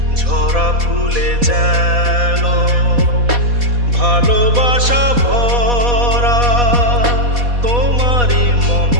ঝরা ফুলে যেন ভালোবাসা ভরা তোমারই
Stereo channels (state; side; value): late; left; 4.1 ms